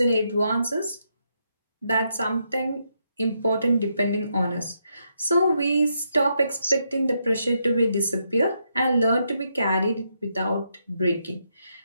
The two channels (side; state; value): both; inverted; correlation -0.79